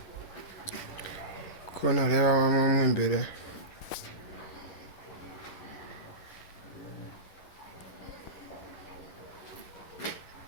Ko nareba mo imbere.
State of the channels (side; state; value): right; late; 11 ms